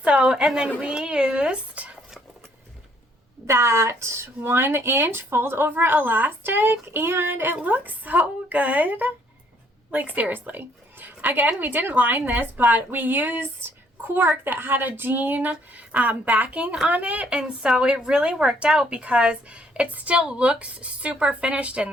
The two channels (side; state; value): both; normal; correlation 0.66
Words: then we used that 1 inch fold over elastic, and it looks so good. Like, seriously. Again, we didn't line this, but we used cork that had a jean backing on it, and so it really worked out because it still looks super finished in